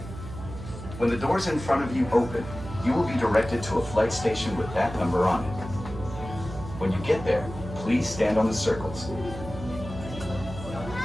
When the doors in front of you open, you will be directed to a flight station with that number on it. When you get there, please stand on the circles.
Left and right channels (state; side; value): noise; right; hum, 11 dB below the sound